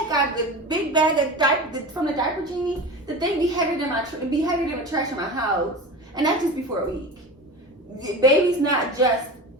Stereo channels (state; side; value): normal; both; correlation 0.30